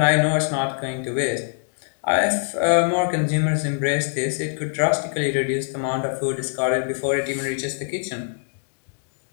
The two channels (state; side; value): silent; right; 63 dB below the other